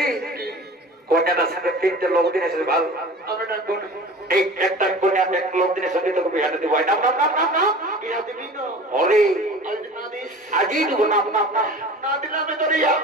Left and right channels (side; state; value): both; normal; correlation 0.40